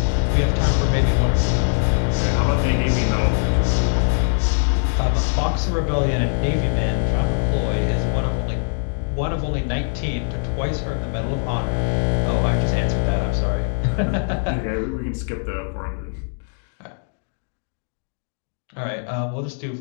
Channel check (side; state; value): right; silent; digital silence